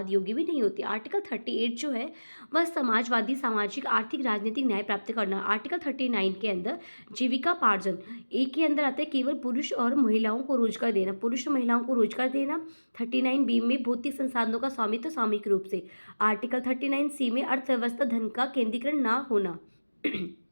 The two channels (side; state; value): both; inverted; correlation -1.00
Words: योग्य भी नहीं होती। आर्टिकल 38 जो है वह समाजवादी, सामाजिक, आर्थिक, राजनीतिक न्याय प्राप्त करना। आर्टिकल 39 के अंदर जीविकापार्जन, एक के अंदर आता है केवल पुरुष और महिलाओं को रोजगार देना, पुरुष और महिलाओं को रोजगार देना। 39 बी में भौतिक संसाधनों का स्वामित्व सामूहिक रूप से। आर्टिकल 39 सी में अर्थव्यवस्था धन का केंद्रीकरण ना होना।